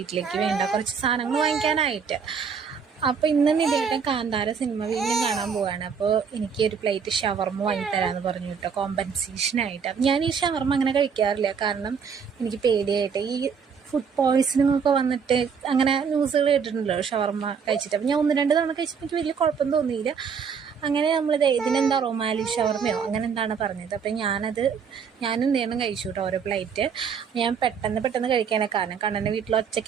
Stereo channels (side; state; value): left; quieter; 6.4 dB